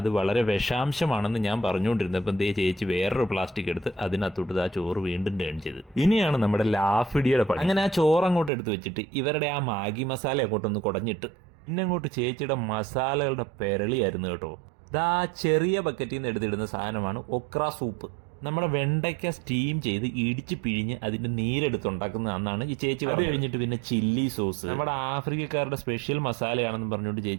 വളരെ വിഷാംശമാണെന്ന് ഞാൻ പറഞ്ഞുകൊണ്ടിരുന്നപ്പം ദേ ചേച്ചി വേറൊരു പ്ലാസ്റ്റിക് എടുത്ത് അതിനകത്തോട്ട് ആ ചോറ് വീണ്ടും ടേൺ ചെയ്ത്. ഇനിയാണ് നമ്മുടെ ലാഫിഡിയുടെ പണി. അങ്ങനെ ആ ചോറ് അങ്ങോട്ട് എടുത്ത് വെച്ചിട്ട് ഇവരുടെ ആ മാഗി മസാല അങ്ങോട്ടൊന്ന് കുടഞ്ഞിട്ട് പിന്നെ അങ്ങോട്ട് ചേച്ചിയുടെ മസാലകളുടെ പെരളിയായിരുന്നു കേട്ടോ. ഇതാ ചെറിയ ബക്കറ്റിൽ നിന്ന് എടുത്തിടുന്ന സാധനമാണ് ഒക്ര സൂപ്പ്. നമ്മുടെ വെണ്ടയ്ക്ക സ്റ്റീം ചെയ്ത് ഇടിച്ച് പിഴിഞ്ഞ് അതിന്റെ നീരെടുത്തുണ്ടാക്കുന്നതാണെന്നാണ് ഈ ചേച്ചി. അത് കഴിഞ്ഞിട്ട് പിന്നെ ചില്ലി സോസ്, നമ്മുടെ ആഫ്രിക്കക്കാരുടെ സ്പെഷ്യൽ മസാലയാണെന്ന് പറഞ്ഞുകൊണ്ട്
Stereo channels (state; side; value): drops out; left; at 8.5 s